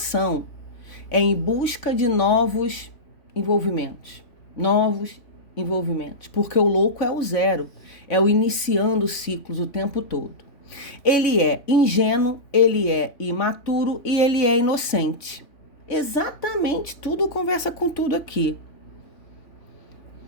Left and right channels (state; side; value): late; right; 3.5 ms